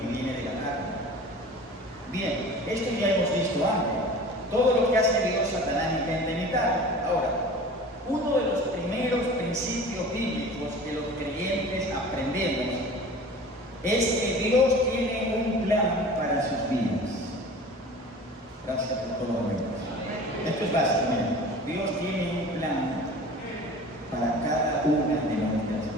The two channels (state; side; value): normal; both; correlation 0.40